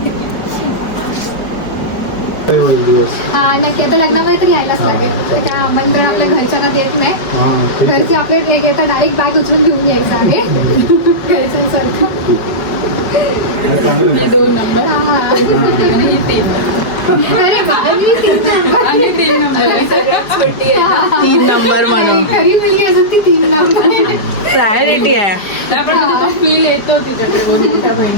मोठे होईल दिवस. हा नक्की आता लग्नामध्ये तर यायलाच लागेल. तर काय आमंत्रण आपल्या घरच्यांना देत नाही. हां, ठीक आहे. घरचे आपले एक येतात डायरेक्ट बॅग उचलून घेऊन यायचं आहे घरच्यांसारखं. चांगलं आहे. 2 नंबर हा. आणि 3 अरे बाबा, मी तीन नंबर. आणि 3 नंबर सगळ्यात छोटी आहे. 3 नंबर म्हणून खरी मुलगी असून ती 3 नंबर. प्रायोरिटी आहे. नाही, पण फील येतो तिच्याकडे बघून मोठ्या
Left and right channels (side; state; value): right; late; 4.8 ms